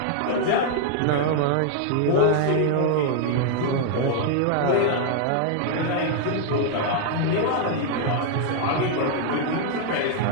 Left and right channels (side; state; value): both; different; correlation 0.00